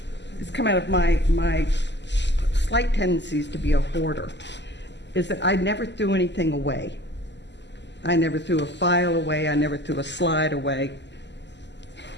has come out of my slight tendencies to be a hoarder is that I never threw anything away. I never threw a file away. I never threw a slide away.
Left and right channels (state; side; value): late; right; 0.51 ms